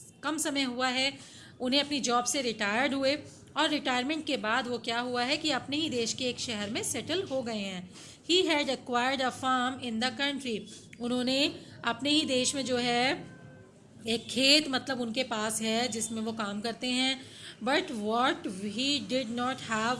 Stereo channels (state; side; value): identical; both; correlation 1.00